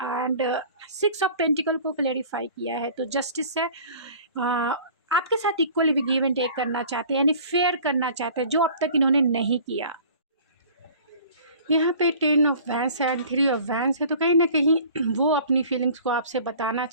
6 ऑफ पेंटिकल को क्लेरिफाई किया है, तो जस्टिस है। आपके साथ इक्वली गिव एंड टेक करना चाहते हैं, यानी फेयर करना चाहते हैं, जो अब तक इन्होंने नहीं किया। यहाँ पे 10 ऑफ वैंस है एंड 3 ऑफ वैंस है, तो कहीं ना कहीं वो अपनी फीलिंग्स को आपसे बताना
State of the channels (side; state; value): both; inverted; correlation -0.47